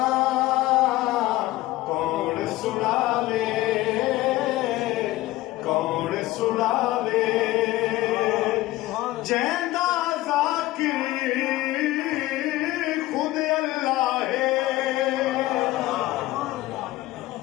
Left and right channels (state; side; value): quieter; right; 17.3 dB